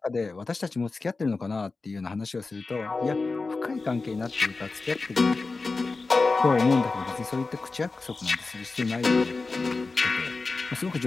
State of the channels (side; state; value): right; quieter; 3.9 dB